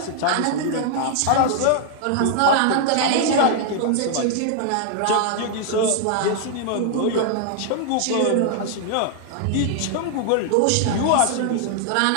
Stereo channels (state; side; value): different; both; correlation 0.00